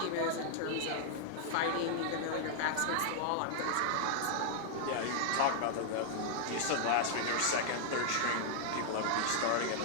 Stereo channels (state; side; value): different; both; correlation -0.01